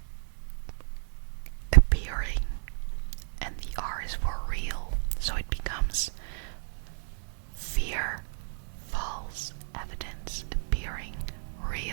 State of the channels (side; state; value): left; silent; digital silence